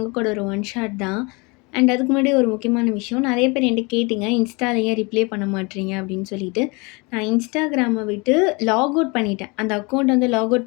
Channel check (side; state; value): right; quieter; 28.3 dB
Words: ஒரு ஒன் ஷாட் தான். அண்ட் அதுக்கு முன்னாடி ஒரு முக்கியமான விஷயம், நிறைய பேர் என்கிட்ட கேட்டிங்க இன்ஸ்டால ஏன் ரிப்ளை பண்ண மாட்டீங்க அப்படின்னு சொல்லிட்டு. நான் இன்ஸ்டாகிராமை விட்டு லாக் அவுட் பண்ணிட்டேன். அந்த அக்கௌண்ட் வந்து லாக்